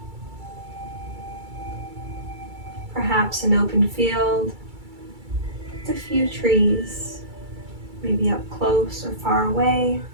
Perhaps an open field with a few trees, maybe up close or far away.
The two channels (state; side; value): late; left; 2.3 ms